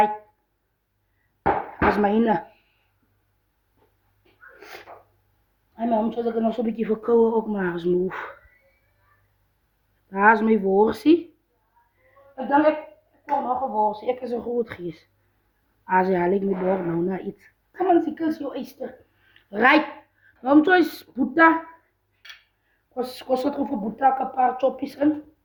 dat is mijn. En mijn omtje, dat ik nog zo'n beetje verkouden ook maar eens move. Daar is mijn worstje. Ik denk, ik kom nog een worstje. Ik is een groot geest. Als je haal ik me door nou naar iets. Kom aan, ziekels, joh, Easter. Right. Waarom choice boeta? Kost het over boeta een paar choppies in.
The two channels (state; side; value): identical; both; correlation 1.00